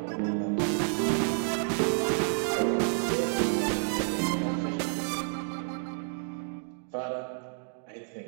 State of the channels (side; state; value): left; silent; 58 dB below the other